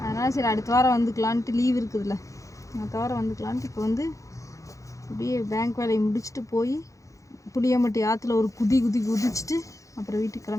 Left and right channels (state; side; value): late; right; 0.15 ms